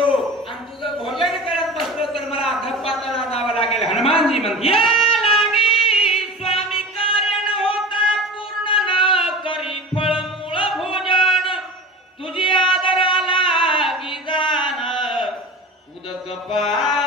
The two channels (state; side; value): normal; both; correlation 0.34